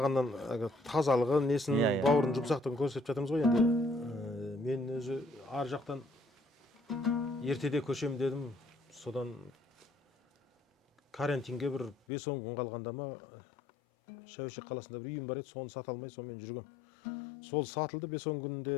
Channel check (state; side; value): drops out; right; at 12.0 s